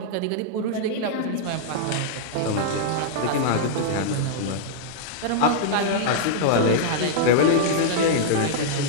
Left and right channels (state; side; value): different; both; correlation -0.02